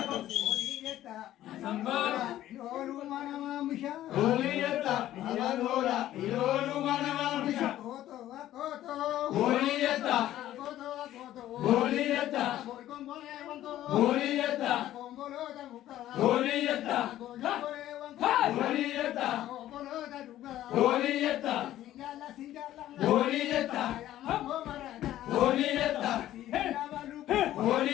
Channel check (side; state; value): right; quieter; 13.4 dB